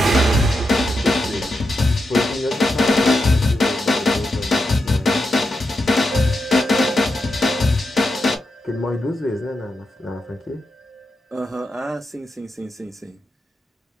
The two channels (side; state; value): both; normal; correlation 0.87